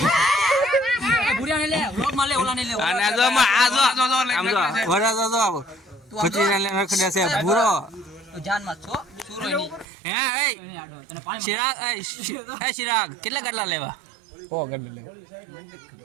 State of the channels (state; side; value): drops out; left; at 9.9 s